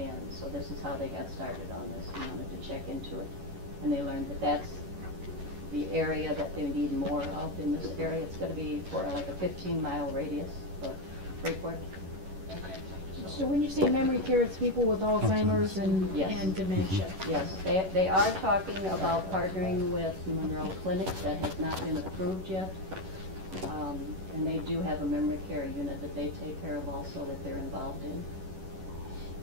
so this is how they got started on this, and wanted to check into it. And they learned that that's the area that they need more of in this area. It's gonna be for like a 15-mile radius of Freeport. So when you say memory care, it's people with Alzheimer's Yes. and dementia? Yes, they are talking about partnering with Monroe Clinic. That has not been approved yet. And they do have a memory care unit that they take care of also that they're involved in.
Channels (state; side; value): late; left; 11 ms